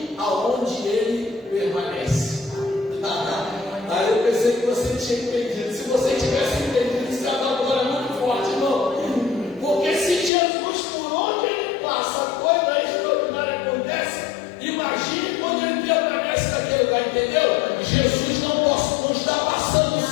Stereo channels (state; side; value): drops out; right; at 10.3 s